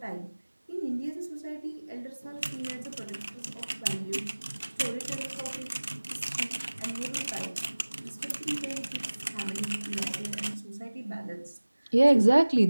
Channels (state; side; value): inverted; both; correlation -1.00